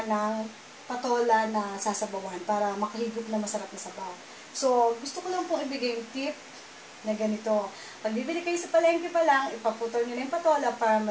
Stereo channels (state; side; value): identical; both; correlation 1.00